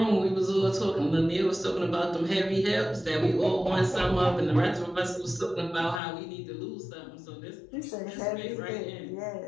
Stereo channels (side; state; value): right; drops out; at 6.0 s